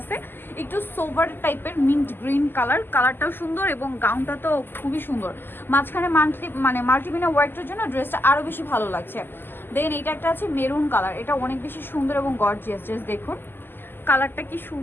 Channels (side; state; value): right; late; 0.097 ms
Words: একটু সোভার টাইপের মিন্ট গ্রিন কালার। কালারটাও সুন্দর এবং গাউনটা তো খুবই সুন্দর। মাঝখানে মাল্টিমিনা ওয়ার্কের জন্য ড্রেসটা আরো বেশি ভালো লাগছে। দেন এইটা একটা আছে মেরুন কালার, এটা অনেক বেশি সুন্দর এবং গর্জিয়াস। জাস্ট দেখুন কালারটা কি